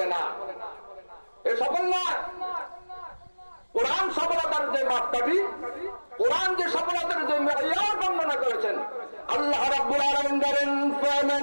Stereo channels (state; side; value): inverted; both; correlation -1.00